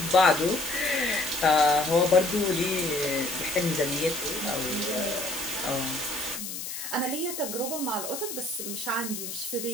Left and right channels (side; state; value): left; noise; hiss, 7 dB below the sound